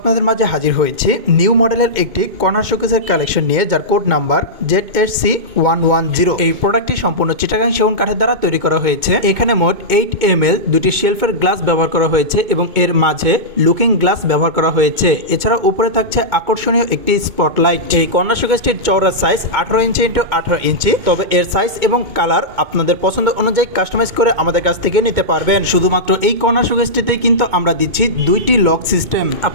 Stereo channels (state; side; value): late; left; 2.2 ms